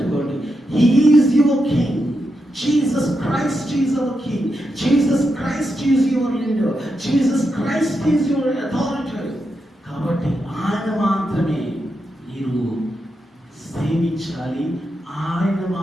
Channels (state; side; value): normal; both; correlation 0.86